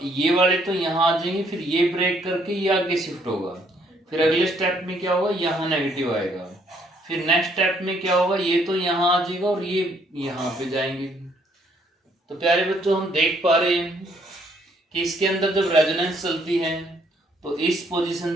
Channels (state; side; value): normal; both; correlation 0.67